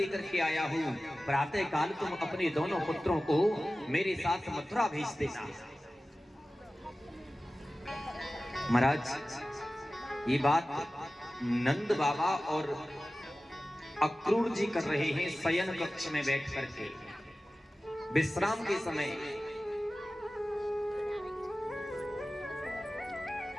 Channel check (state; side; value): normal; both; correlation 0.96